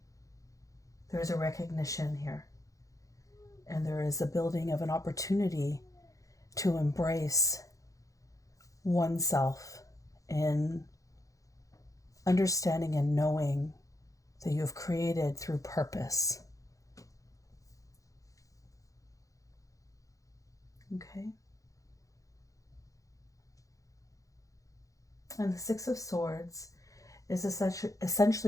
There is a recognition here. And there is a building of an opportunity to embrace oneself in understanding and knowing that you have created through purpose. Okay. And the Six of Swords is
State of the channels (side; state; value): right; late; 0.16 ms